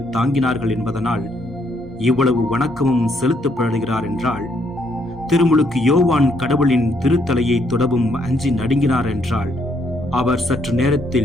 தாங்கினார்கள் என்பதனால் இவ்வளவு வணக்கமும் செலுத்தப்படுகிறார் என்றால், திருமுழுக்கு யோவான் கடவுளின் திருத்தலையை தொடவும் அஞ்சி நடுங்கினார் என்றால், அவர் சற்று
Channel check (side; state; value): both; normal; correlation 0.72